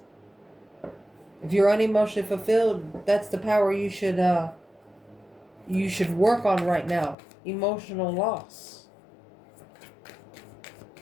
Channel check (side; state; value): right; drops out; at 7.2 s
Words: If you're unemotionally fulfilled, that's the power you should work on right now. Emotional loss.